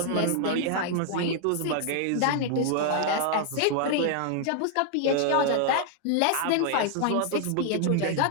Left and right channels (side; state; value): both; different; correlation 0.00